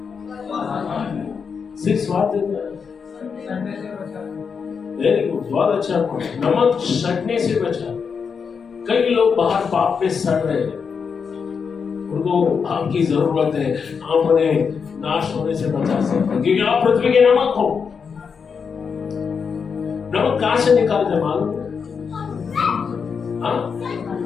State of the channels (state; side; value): quieter; right; 6.0 dB